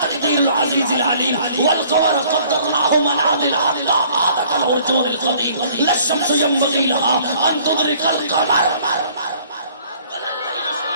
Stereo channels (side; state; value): both; inverted; correlation -0.56